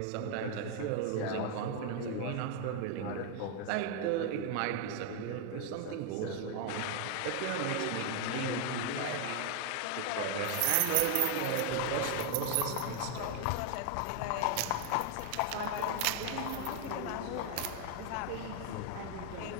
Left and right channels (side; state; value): both; different; correlation 0.00